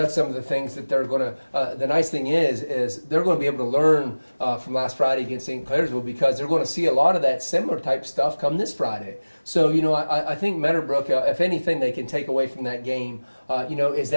some of the things that they're going to the nice thing is they're going to be able to learn from last Friday against St. Clairsville, because they're going to see a lot of that similar type stuff come this Friday. So, I think Meadowbrook, if anything they can take away from that game, is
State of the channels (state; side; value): inverted; both; correlation -1.00